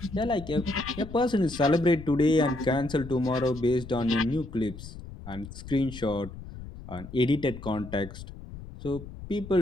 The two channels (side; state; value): left; noise; rumble, 13 dB below the sound